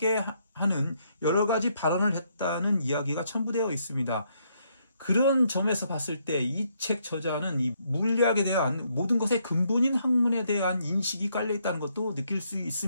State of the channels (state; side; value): inverted; both; correlation -0.73